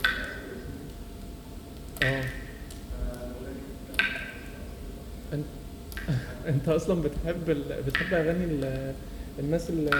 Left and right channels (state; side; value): identical; both; correlation 1.00